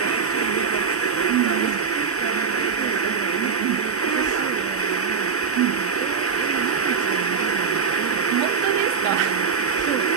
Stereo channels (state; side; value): quieter; left; 5.9 dB